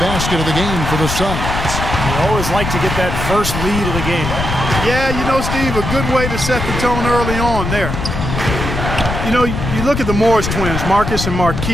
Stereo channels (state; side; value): noise; left; rumble, 4 dB below the sound